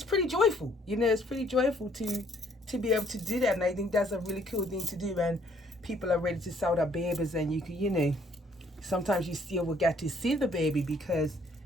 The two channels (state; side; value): normal; both; correlation 0.64